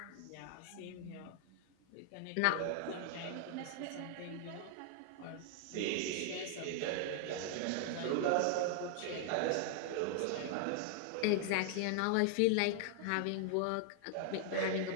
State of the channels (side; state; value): both; different; correlation 0.00